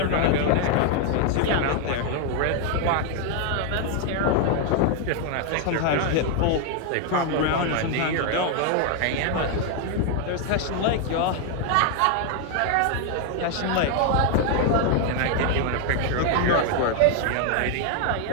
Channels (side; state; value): both; different; correlation 0.00